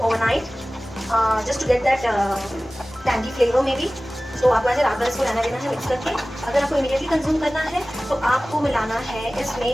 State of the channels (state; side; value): normal; both; correlation 0.97